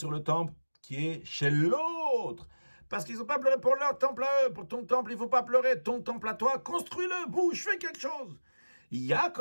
le temple qui est chez l'autre. Parce qu'ils n'ont pas pleuré pour leur temple à eux. Pour ton temple, il ne faut pas pleurer. Ton temple à toi, construis-le, bouge, fais quelque chose.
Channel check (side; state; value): both; inverted; correlation -1.00